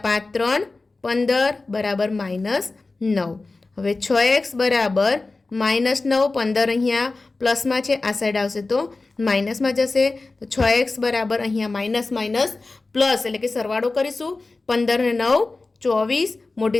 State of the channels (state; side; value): quieter; right; 3.5 dB